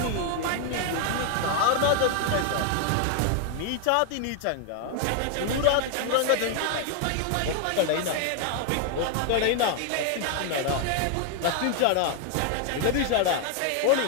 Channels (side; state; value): both; different; correlation 0.00